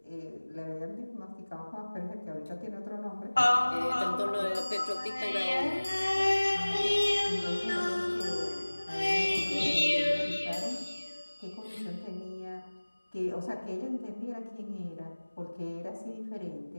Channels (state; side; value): inverted; both; correlation -1.00